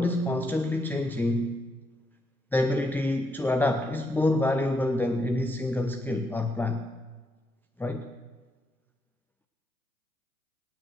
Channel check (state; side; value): normal; both; correlation 0.79